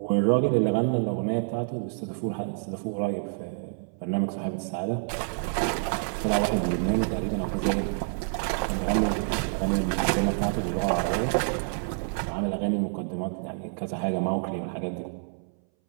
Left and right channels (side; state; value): left; silent; 60 dB below the other